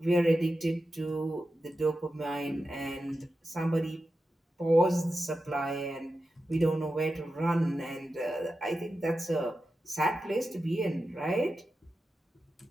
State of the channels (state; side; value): normal; both; correlation 0.91